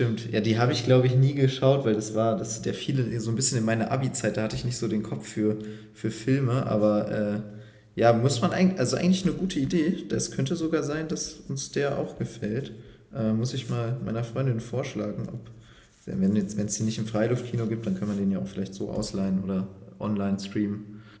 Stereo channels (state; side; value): identical; both; correlation 1.00